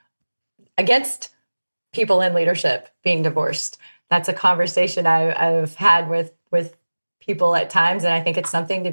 against people in leadership being divorced. That's a conversation I've had with people at times. And I think it's something to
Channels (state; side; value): inverted; both; correlation -1.00